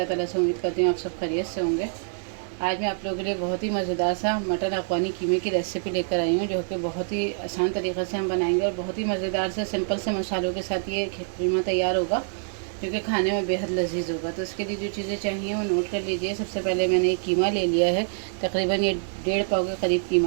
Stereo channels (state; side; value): silent; left; 58 dB below the other